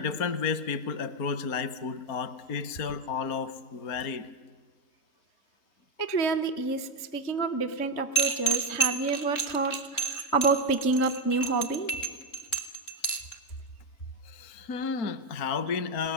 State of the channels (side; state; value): right; late; 3.7 ms